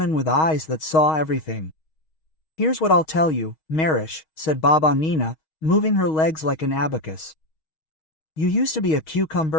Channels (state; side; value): late; right; 6.4 ms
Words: with eyes that saw everything. Here's what I'll tell you, Marish, said Baba Nina, moving her legs like an abacus. You used to be a